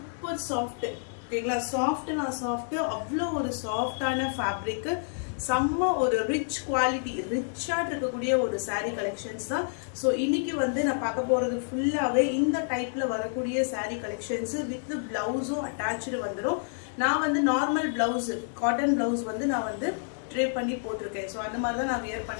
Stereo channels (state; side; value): silent; right; digital silence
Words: சாஃப்ட், ஓகேங்களா? சாஃப்ட்னா சாஃப்ட், அவ்வளோ ஒரு சாஃப்டான ஃபேப்ரிக், செம்ம ஒரு ரிச் குவாலிட்டி, ரிச்சா இருக்கக்கூடிய ஒரு சாரீ கலெக்ஷன்ஸ் தான். ஸோ இன்னைக்கு வந்து நான் பார்க்க போறது ஃபுல்லாவே இந்த டைப்ல வரக்கூடிய சாரீ கலெக்ஷன்ஸ் வித் பிளவுஸும் அட்டாச்சு வந்துடும். நான் வந்து நார்மல் பிளவுஸ், காட்டன் பிளவுஸ் வந்து நான் வந்து ட்ரேப் பண்ணி போட்டிருக்கேன். ஸோ அந்த மாதிரி தான் நான் வியர்